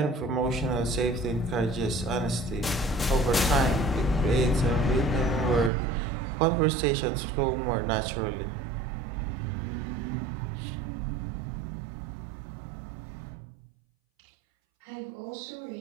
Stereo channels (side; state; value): left; drops out; at 5.7 s